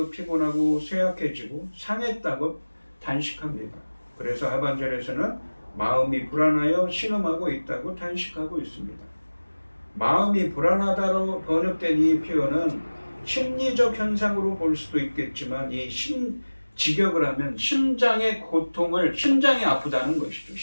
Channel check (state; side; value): inverted; both; correlation -1.00